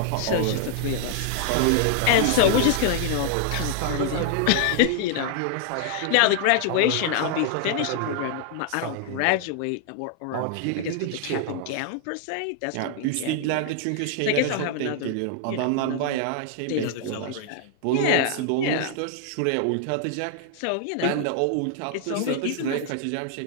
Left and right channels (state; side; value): different; both; correlation 0.00